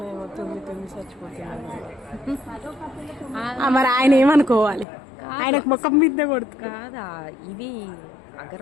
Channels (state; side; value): drops out; right; at 4.9 s